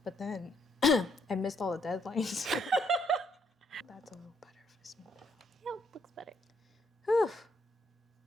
but then I missed all the deadlines. That's a little better for small. Yeah, looks better. Whew.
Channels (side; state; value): both; normal; correlation 0.73